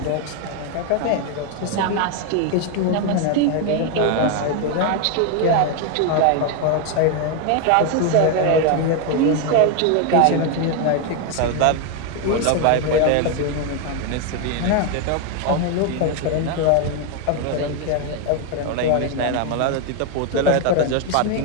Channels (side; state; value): both; different; correlation 0.01